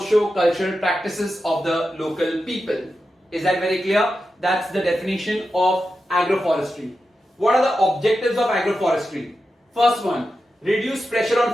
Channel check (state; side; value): normal; both; correlation 0.90